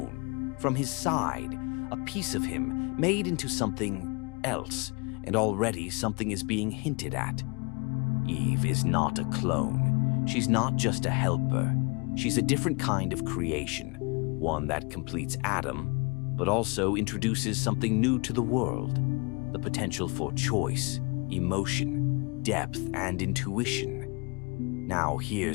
from his side, a piece of him made into something else, and already something is being hinted at. Eve is not a clone. She's not just a helper. She's a different kind of creation, one that completes Adam, but also introduces something new to the world. The potential for choice, emotion, depth, and intuition. Now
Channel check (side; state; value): right; quieter; 31.0 dB